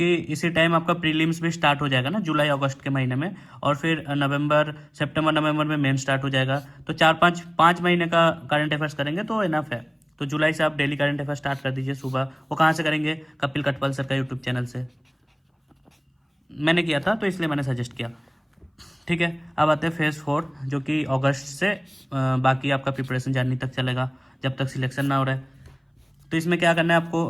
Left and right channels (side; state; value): both; identical; correlation 1.00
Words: इसी टाइम आपका प्रीलिम्स भी स्टार्ट हो जाएगा ना, जुलाई अगस्त के महीने में, और फिर सितंबर नवंबर में मेन स्टार्ट हो जाएगा। तो 4-5 महीने का करंट अफेयर्स करेंगे तो इनफ है। तो जुलाई से आप डेली करंट अफेयर्स स्टार्ट कर दीजिए सुबह। वो कहाँ से करेंगे, कपिल कटपल सर का यूट्यूब चैनल से, मैंने किया था तो इसलिए मैंने सजेस्ट किया, ठीक है। अब आते हैं फेज़ 4, जो कि अगस्त से बाकी आपका प्रिपरेशन जनवरी तक चलेगा, जब तक सिलेक्शन ना हो रहा है। तो इसमें क्या करना है,